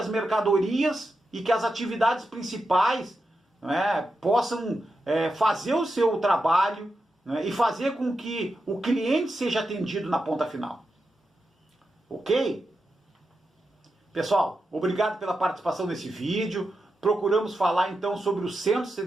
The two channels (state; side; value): normal; both; correlation 0.88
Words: mercadorias e que as atividades principais possam fazer o seu trabalho e fazer com que o cliente seja atendido na ponta final. Ok? Pessoal, obrigado pela participação nesse vídeo. Procuramos falar então sobre os centros de